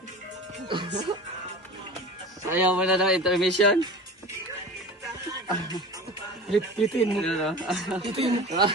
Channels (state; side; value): normal; both; correlation 0.35